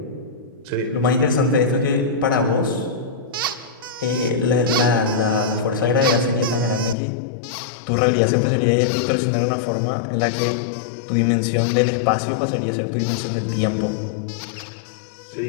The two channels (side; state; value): right; drops out; at 7.0 s